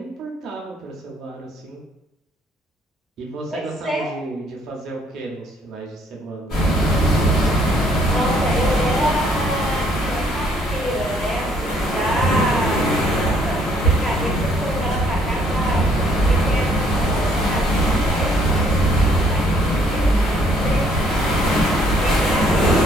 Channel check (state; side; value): normal; both; correlation 0.65